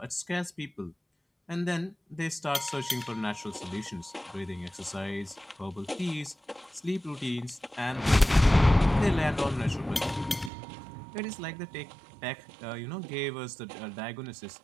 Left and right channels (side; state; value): left; drops out; at 10.5 s